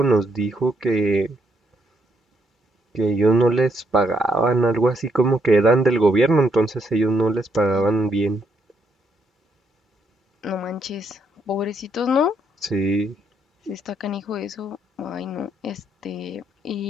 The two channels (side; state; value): both; normal; correlation 0.75